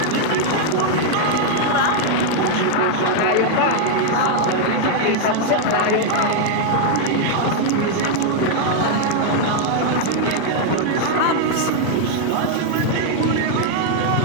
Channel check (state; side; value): different; both; correlation 0.00